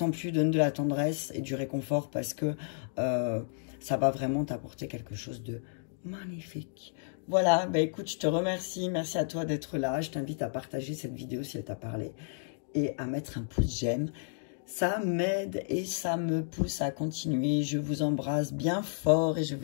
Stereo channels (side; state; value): right; silent; digital silence